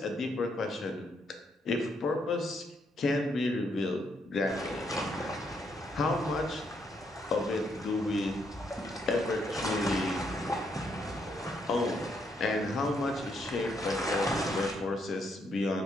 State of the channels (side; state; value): both; normal; correlation 0.75